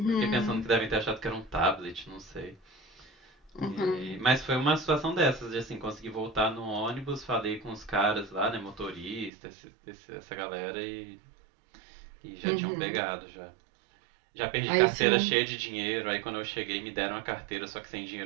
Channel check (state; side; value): drops out; left; at 9.3 s